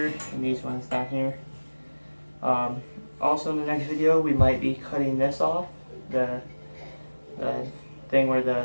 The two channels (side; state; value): both; inverted; correlation -1.00